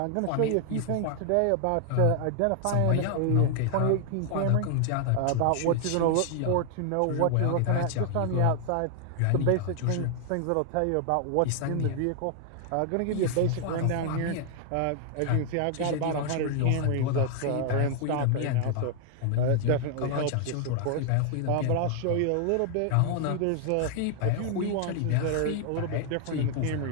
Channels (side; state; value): both; different; correlation 0.00